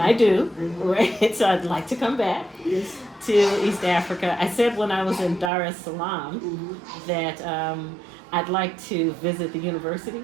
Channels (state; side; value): drops out; left; at 5.5 s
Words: I do, right? So I'd like to come back Yes. to East Africa. I said when I was in Dar es Salaam that I'd like to visit the university,